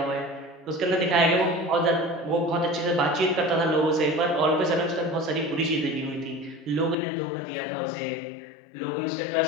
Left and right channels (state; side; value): drops out; right; at 7.0 s